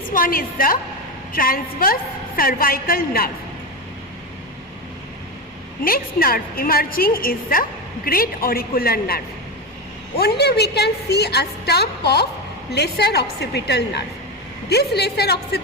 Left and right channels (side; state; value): both; normal; correlation 0.16